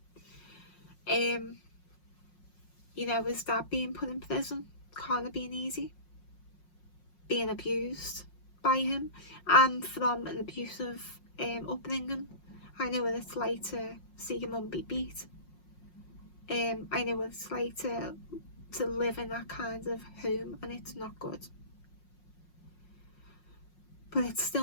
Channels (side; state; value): right; late; 5.5 ms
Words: You know, his dad being put in prison can't have been easy. Being abused by him, and from an abusive upbringing. I know what it's like to see your mum be beat. I know what it's like to live in that kind of home, and it's not good. But it's